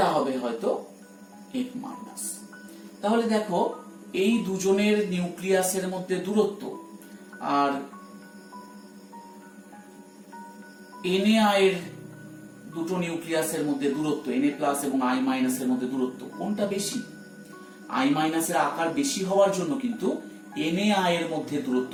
হবে হয়তো F মাইনাস। তাহলে দেখো এই দুজনের নিউক্লিয়াসের মধ্যে দূরত্ব আর Na এর দুটো নিউক্লিয়াসের মধ্যে দূরত্ব, Na প্লাস এবং I মাইনাসের মধ্যে দূরত্ব কোনটা বেশি? I মাইনাসের আকার বেশি হওয়ার জন্য কিন্তু Na এর মধ্যে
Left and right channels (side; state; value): both; identical; correlation 1.00